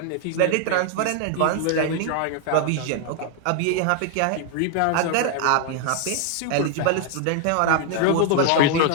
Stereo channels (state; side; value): different; both; correlation 0.00